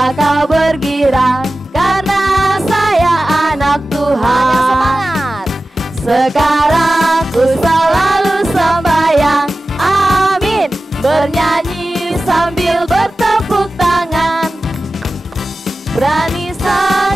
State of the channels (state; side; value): normal; both; correlation 0.95